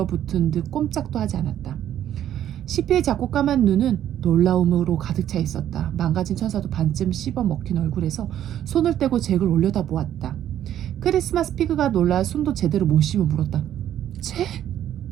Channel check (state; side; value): quieter; left; 11.1 dB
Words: 듯 꼼짝도 하지 않았다. 시피의 작고 까만 눈은 놀라움으로 가득 차 있었다. 망가진 천사도 반쯤 씹어 먹힌 얼굴에서 손을 떼고 잭을 올려다보았다. 크리스마스 피그가 놀라 숨도 제대로 못 쉬며 물었다. 잭?